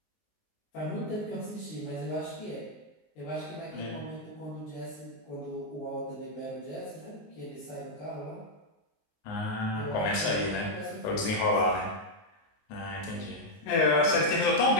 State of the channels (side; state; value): right; late; 19 ms